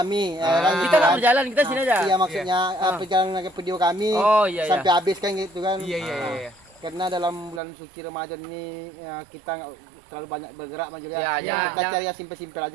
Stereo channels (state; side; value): drops out; left; at 7.6 s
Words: Kita nggak berjalan, kita sini aja. Iya, maksudnya perjalanan video kami Oh, iya, iya. sampai habis kan gitu kan. Iya. Karena dalam bulan suci Ramadan ini kita nggak terlalu banyak bergerak Mas Jul, Ya, ya. ya. Kita cari yang simpel-simpel